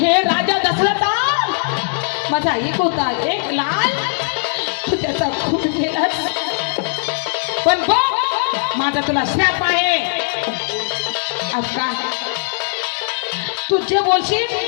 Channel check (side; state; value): right; silent; digital silence